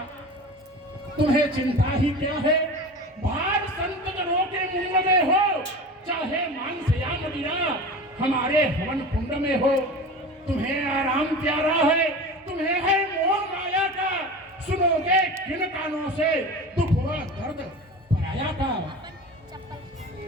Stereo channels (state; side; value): normal; both; correlation 0.33